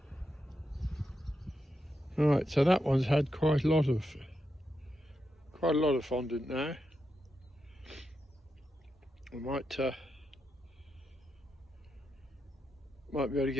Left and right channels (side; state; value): both; normal; correlation 0.86